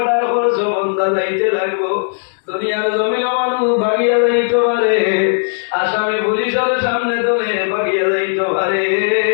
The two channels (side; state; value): right; silent; digital silence